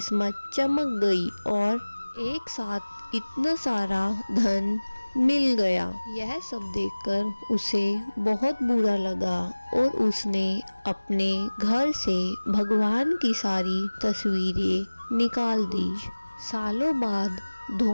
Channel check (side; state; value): both; inverted; correlation -1.00